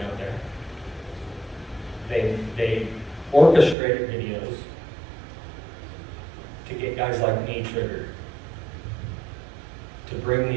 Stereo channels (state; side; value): drops out; left; at 3.8 s